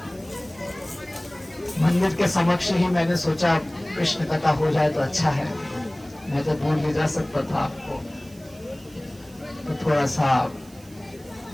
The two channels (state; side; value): noise; right; hiss, 24 dB below the sound